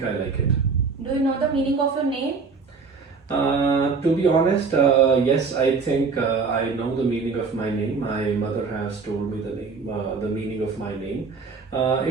I like it. Do you know the meaning of your name? To be honest, yes, I think I know the meaning of my name. My mother has told me the meaning of my name.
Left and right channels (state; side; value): quieter; left; 4.8 dB